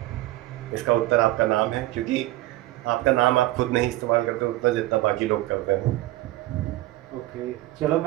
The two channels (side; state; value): left; quieter; 17.0 dB